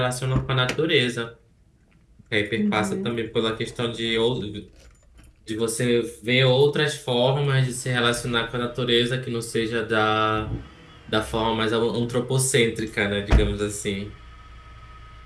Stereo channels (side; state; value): both; identical; correlation 1.00